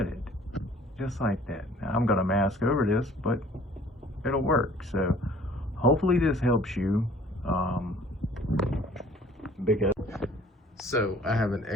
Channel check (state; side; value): normal; both; correlation 0.53